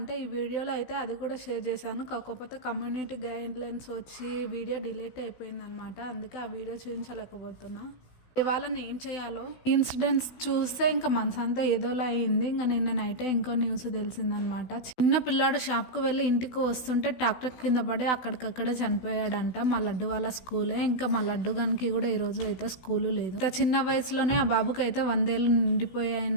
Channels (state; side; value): late; right; 16 ms